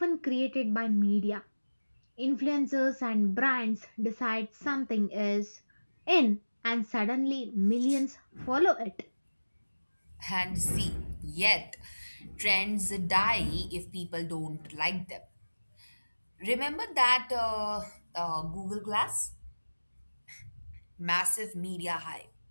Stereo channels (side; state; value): both; inverted; correlation -1.00